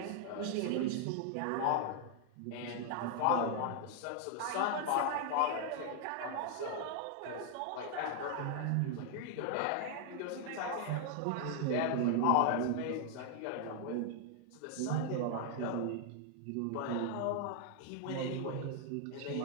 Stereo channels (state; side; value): different; both; correlation 0.00